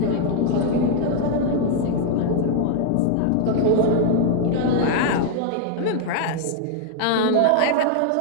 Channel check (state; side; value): different; both; correlation 0.00